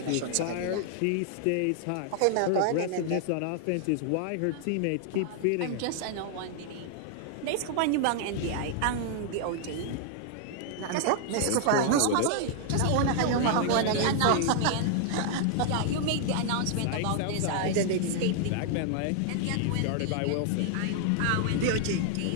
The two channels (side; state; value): both; different; correlation 0.00